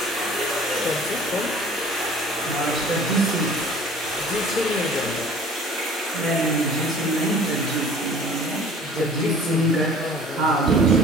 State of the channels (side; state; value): both; normal; correlation 0.48